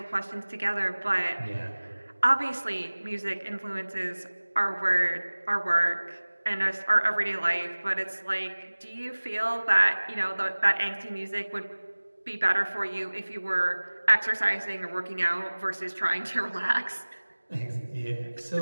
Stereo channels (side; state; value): both; inverted; correlation -1.00